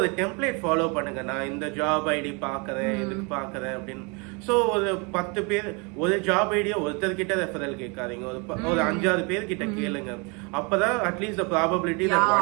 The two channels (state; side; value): quieter; left; 31.5 dB